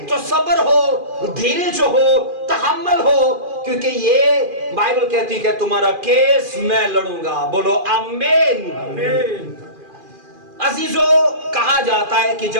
تو صبر ہو, دھیرج ہو, تحمل ہو, کیونکہ یہ بائبل کہتی ہے تمہارا کیس میں لڑوں گا. بولو آمین. عزیزو, کہا جاتا ہے کہ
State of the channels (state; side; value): late; left; 2.4 ms